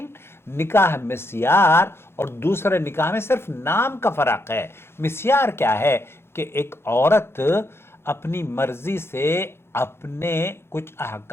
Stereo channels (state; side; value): late; right; 0.12 ms